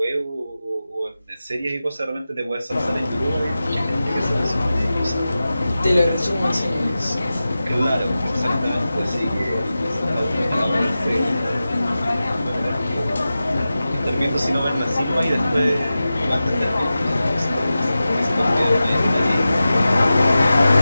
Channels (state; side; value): inverted; both; correlation -0.94